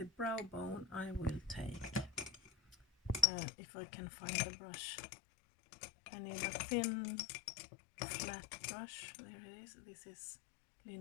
brow bone, I will take, if I can find the brush, I need a thin flat brush. There it is. This is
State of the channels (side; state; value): right; drops out; at 3.2 s